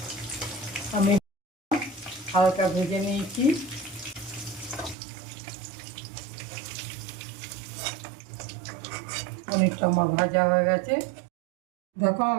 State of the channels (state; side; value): drops out; left; at 5.0 s